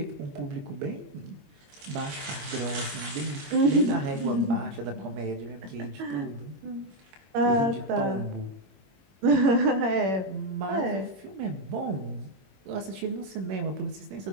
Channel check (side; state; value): left; late; 21 ms